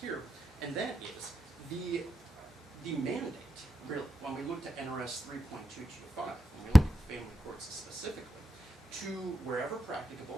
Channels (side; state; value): both; normal; correlation 0.88